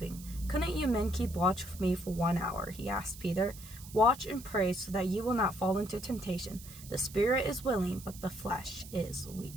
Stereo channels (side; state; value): right; noise; hiss, 16 dB below the sound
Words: 'Couldn't you men keep watch with me for 1 hour?' he asked Peter. 'Watch and pray so that you will not fall into temptation. The spirit is willing, but the flesh is